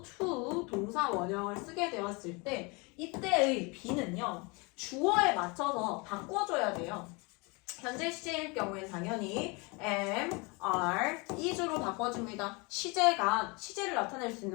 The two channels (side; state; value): right; quieter; 28.6 dB